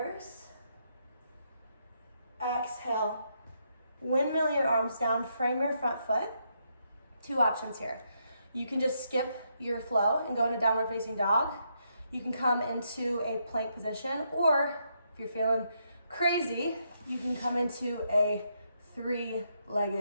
Exhale, windmill your arms down, frame your front foot. Two options here. You can just skip your flow and go into downward facing dog. You can come into a plank position, or if you're feeling crazy, you can come into a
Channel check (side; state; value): both; inverted; correlation -0.78